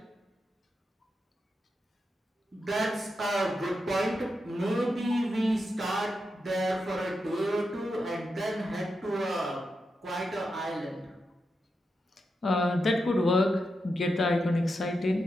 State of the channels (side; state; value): both; normal; correlation 0.87